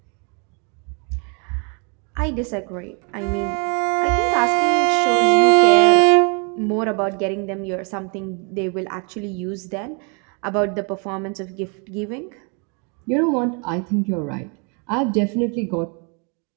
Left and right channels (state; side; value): quieter; left; 36.2 dB